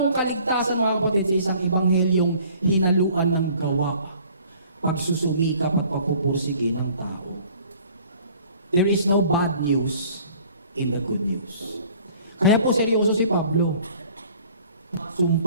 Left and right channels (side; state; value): both; inverted; correlation -0.53